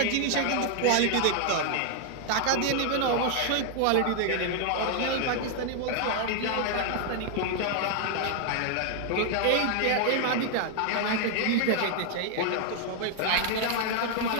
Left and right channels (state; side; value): different; both; correlation 0.00